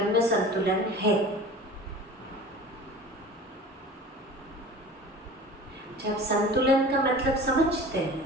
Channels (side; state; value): both; normal; correlation 0.39